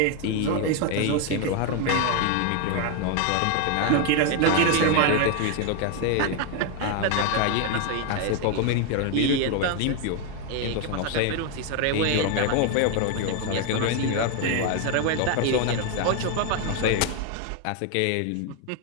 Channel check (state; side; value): different; both; correlation 0.01